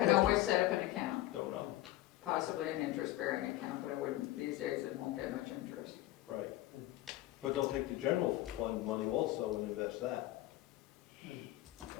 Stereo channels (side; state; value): right; quieter; 16.0 dB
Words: always set up an account, Don't know. possibly an interest-bearing account, but I wouldn't, these days it won't get much interest. Right. But they'll take the general fund money also and invest that.